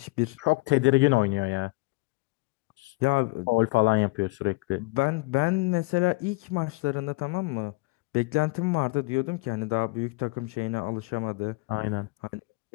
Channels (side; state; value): right; quieter; 25.8 dB